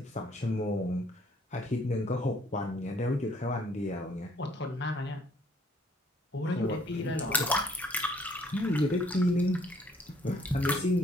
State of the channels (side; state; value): both; normal; correlation 0.62